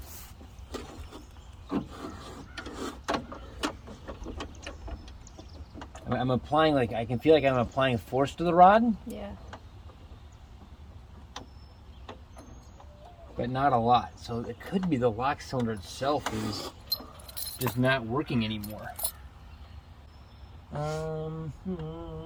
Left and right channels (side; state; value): both; identical; correlation 1.00